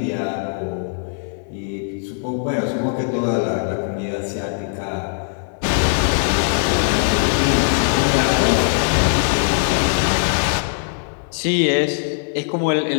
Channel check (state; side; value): silent; right; digital silence